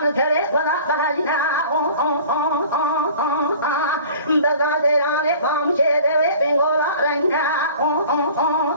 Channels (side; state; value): both; inverted; correlation -0.45